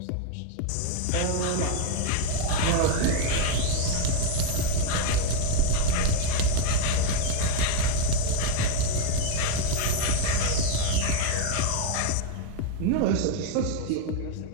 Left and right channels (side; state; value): both; different; correlation 0.01